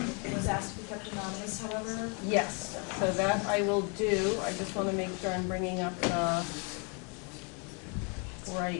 asked to be kept anonymous, however. Yes, so that I will do. I just want to make sure I'm bringing up the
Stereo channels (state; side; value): quieter; right; 35.0 dB